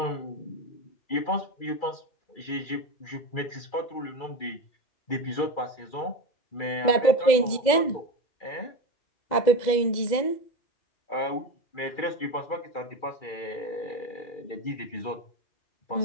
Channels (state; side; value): late; right; 2.0 ms